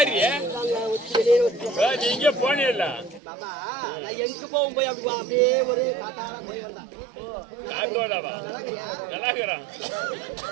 நீங்க போனீல்ல மாமா நான் எங்க போவும் போய் அப்படி அப்படியே ஒரு காத்தாட போய் வந்தா காத்தோடவா நல்லா இருக்கறியா நல்லா இருக்கறான்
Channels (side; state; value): left; drops out; at 3.2 s